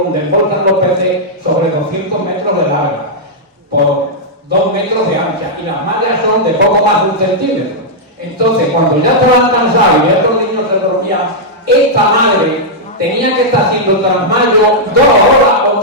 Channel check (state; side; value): normal; both; correlation -0.07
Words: donde embolsan los peces, sobre 200 metros de larga, por 2 metros de ancha. Y las mallas son de poco más de 1 centímetro. Entonces, cuando ya estaban cansados y estos niños se dormían, esta madre tenía que estar haciendo trasmayo 2 horas o